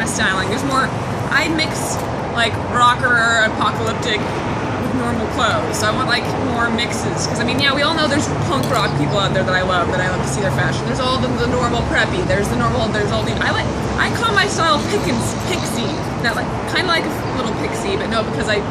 of styling. There's more... I mix, rocker, apocalyptic with normal clothes, so I want, more mixes, because, I mean, yeah, we all know there's punk rock people out there that I love to see their fashion. There's all the normal preppy, there's all the... I call my style pixie, not kind of like a little pixie, but no, because I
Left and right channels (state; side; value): identical; both; correlation 1.00